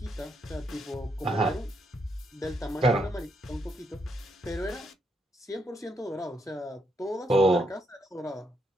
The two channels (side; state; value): both; normal; correlation 0.77